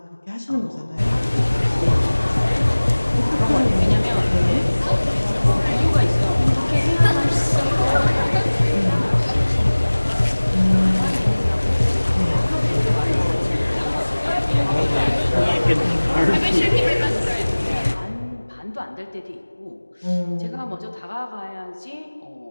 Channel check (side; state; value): both; inverted; correlation -1.00